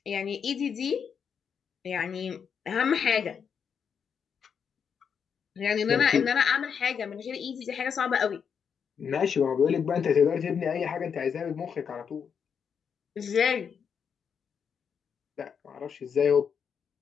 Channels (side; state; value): right; quieter; 7.0 dB